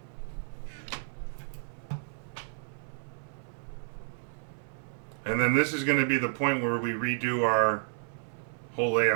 And then this is going to be the point where we redo our whole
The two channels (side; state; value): left; silent; 57 dB below the other